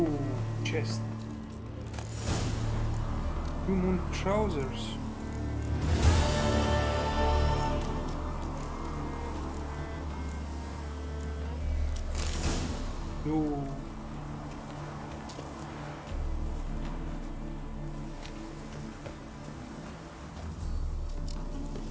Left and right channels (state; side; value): identical; both; correlation 1.00